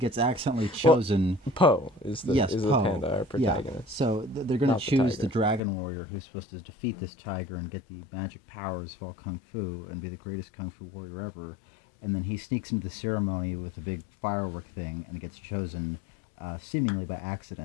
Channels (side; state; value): right; drops out; at 5.6 s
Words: accidentally chosen. Well, Po is the Po. panda, our protagonist. Yeah. So they're going to choose the tiger. dragon warrior who's supposed to defeat this tiger and get the magic powers of all kung fu and be the greatest kung fu warrior ever. And then he sneaks into the ceremony with a big firework thing and gets chosen seemingly by